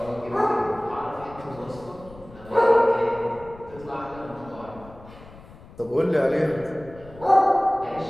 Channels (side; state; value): left; noise; rumble, 20 dB below the sound